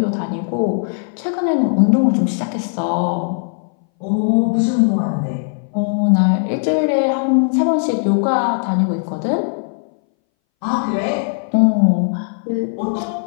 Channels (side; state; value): right; silent; 63 dB below the other